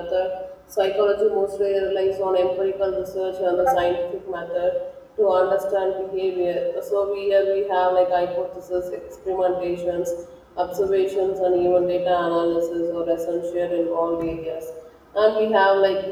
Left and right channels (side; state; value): both; identical; correlation 1.00